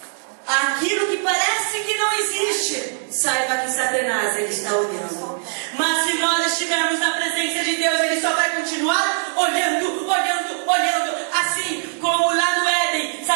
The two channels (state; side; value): silent; left; digital silence